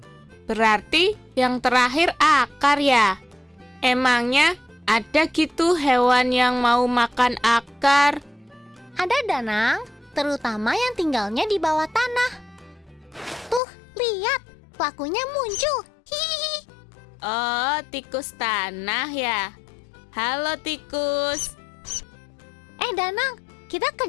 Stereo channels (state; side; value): drops out; right; at 13.6 s